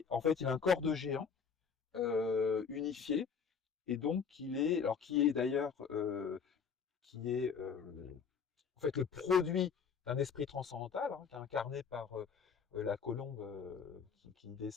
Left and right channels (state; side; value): quieter; right; 6.3 dB